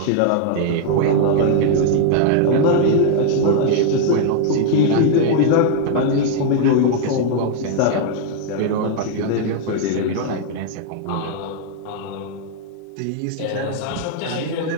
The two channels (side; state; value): both; different; correlation 0.00